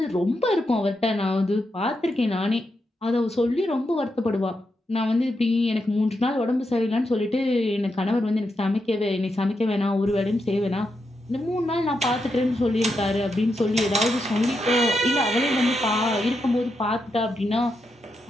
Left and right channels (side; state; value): both; normal; correlation 0.84